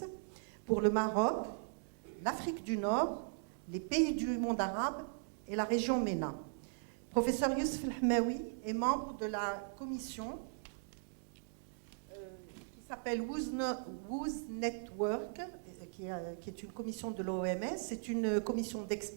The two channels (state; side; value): silent; left; digital silence